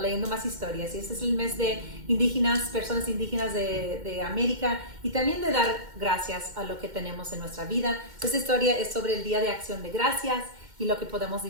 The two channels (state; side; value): late; left; 2.1 ms